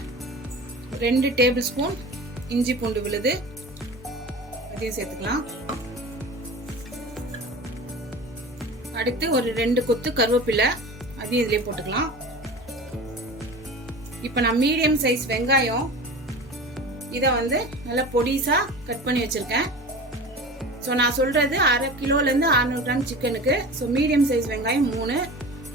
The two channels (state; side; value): normal; both; correlation 0.34